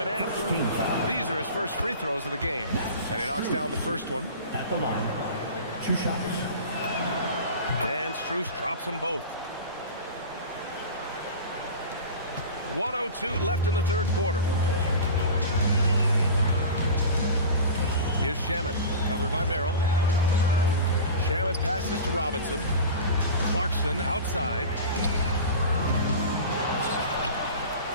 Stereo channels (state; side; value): inverted; both; correlation -0.33